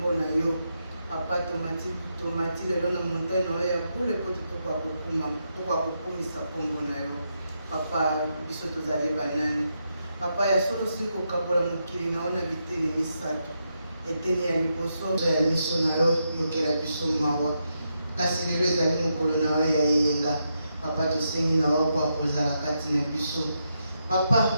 na yo. Papa tomati lelo na montagne na ya bule poto tokwa kokumisa kombo na yo. Papa biso tozali banani. Papa ya solo siko kabola mukili na ona biteni misato. Eteni ya liboso ya miso na yo yokela biso mawa. Kasi lelo ezali mukolo na yo ya yenga. Papa tosengi na yo kwa kozala kati na biso. Papa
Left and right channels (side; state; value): both; inverted; correlation -0.83